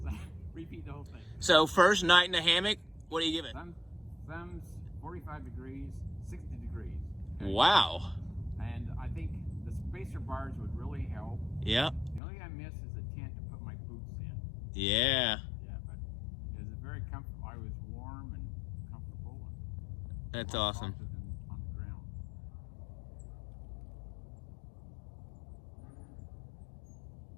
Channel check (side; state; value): right; drops out; at 12.2 s